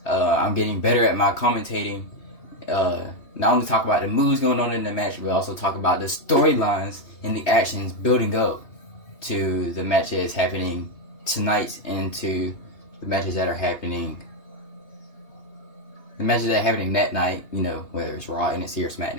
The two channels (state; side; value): late; right; 2.8 ms